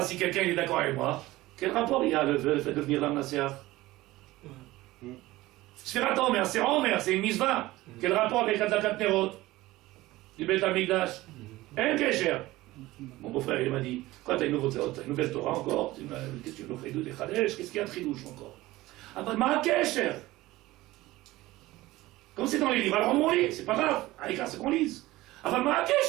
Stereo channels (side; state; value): left; quieter; 18.1 dB